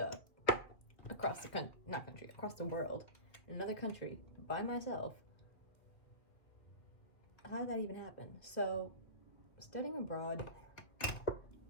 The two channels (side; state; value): right; late; 2.2 ms